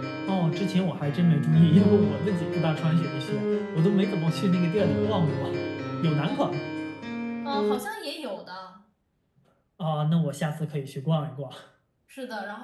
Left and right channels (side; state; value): both; identical; correlation 1.00